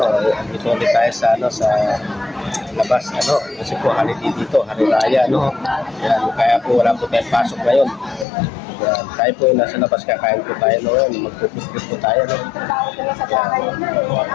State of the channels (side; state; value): right; drops out; at 8.2 s